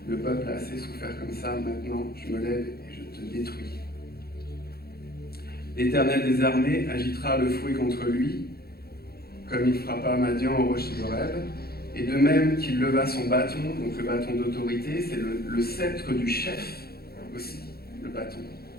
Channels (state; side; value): late; right; 0.45 ms